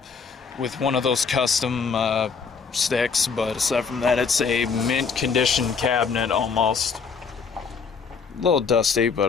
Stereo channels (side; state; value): right; quieter; 5.6 dB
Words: with one of those custom sticks. But aside from that, it's a mint condition cabinet almost. A little dusty, but